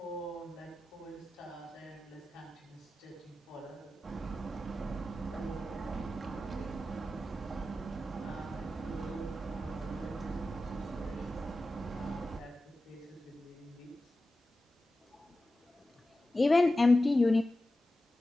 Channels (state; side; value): normal; both; correlation 0.93